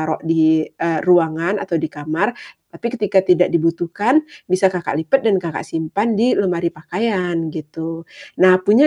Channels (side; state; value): both; identical; correlation 1.00